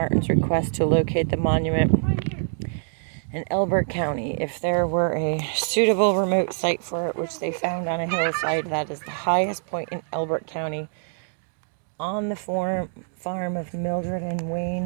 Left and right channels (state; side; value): silent; left; digital silence